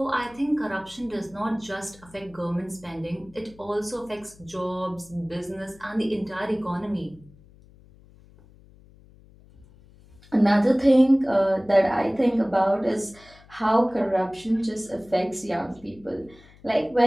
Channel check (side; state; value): left; noise; hum, 25 dB below the sound